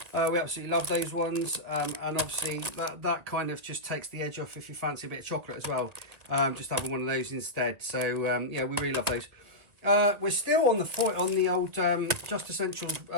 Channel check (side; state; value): left; late; 2.2 ms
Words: We absolutely love those ones, and obviously that kind of just takes the edge off if you fancy a bit of chocolate as well. Just having one of those instead. So yeah, we really love those. We're still on the foil, on the old Just Essentials